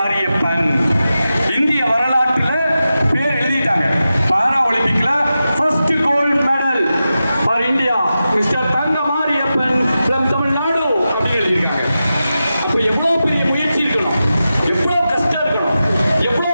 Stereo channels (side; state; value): both; inverted; correlation -0.92